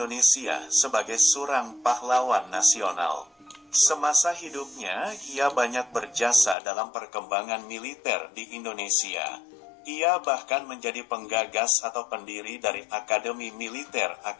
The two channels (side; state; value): right; drops out; at 6.6 s